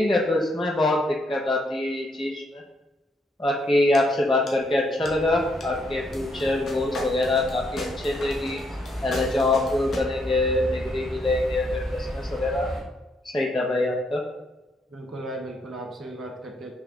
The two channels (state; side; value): normal; both; correlation 0.74